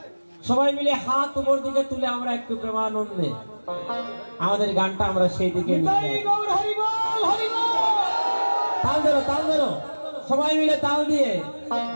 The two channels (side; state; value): both; inverted; correlation -1.00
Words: সবাই মিলে হাত উপর দিকে তুলে আমরা একটু প্রেমানন্দে আমাদের গানটা আমরা সেই দিকে তাল ধরো, তাল ধরো, সবাই মিলে তাল দিয়ে।